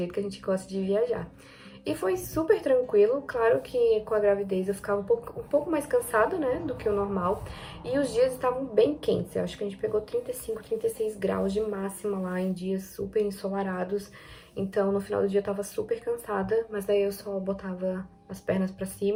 que a gente gosta de viajar. E foi super tranquilo, claro que com a gravidez eu ficava um pouco mais cansada, né, do que o normal. E os dias estavam bem quentes, eu acho que a gente pegou 35, 36 graus de máxima lá em dias super ensolarados. Então no final do dia eu tava super cansada, mas daí eu só botava as pernas pra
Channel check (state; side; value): identical; both; correlation 1.00